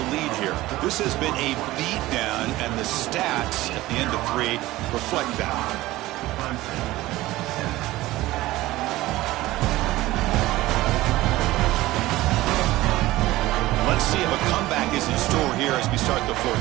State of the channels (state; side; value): quieter; left; 17.5 dB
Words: lead here. This has been a beatdown, and the stats at the end of 3 reflect that. Let's see if a comeback is in store here as we start the